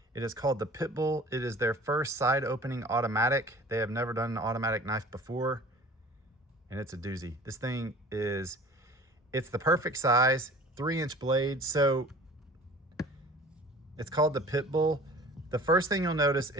It is called the Pitbull. It is their first side opening automatic. They have never done an automatic knife before, and it's a doozy. This thing is, it's the perfect size, 3-inch blade. So it's called the Pitbull. The first thing you'll notice,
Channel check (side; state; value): both; normal; correlation 0.45